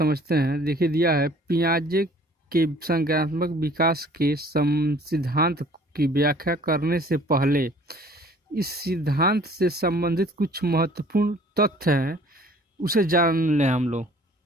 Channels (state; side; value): normal; both; correlation 0.53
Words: हैं। देखिए दिया है पियाजे के संज्ञानात्मक विकास के सिद्धांत की व्याख्या करने से पहले इस सिद्धांत से संबंधित कुछ महत्वपूर्ण तथ्य हैं, उसे जान लें हम लोग।